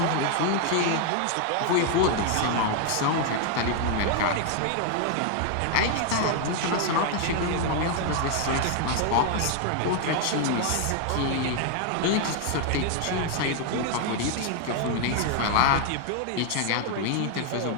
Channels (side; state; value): both; different; correlation 0.00